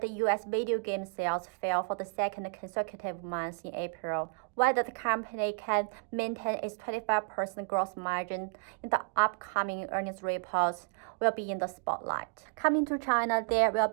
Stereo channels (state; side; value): quieter; left; 38.8 dB